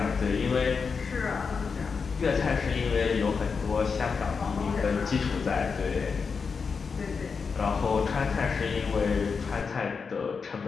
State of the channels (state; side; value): quieter; right; 5.4 dB